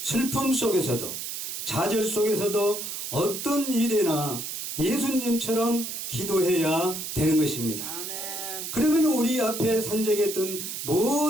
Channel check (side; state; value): right; noise; hiss, 6 dB below the sound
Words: 슬픔 속에서도, 좌절 속에서도 어떤 일이나 예수님처럼 기도해야 되는 것입니다. 그러면 우리 앞에 산적했던